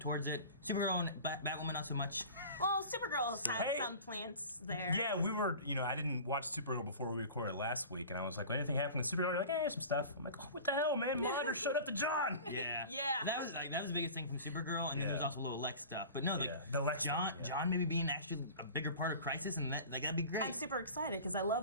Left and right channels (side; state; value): both; inverted; correlation -0.38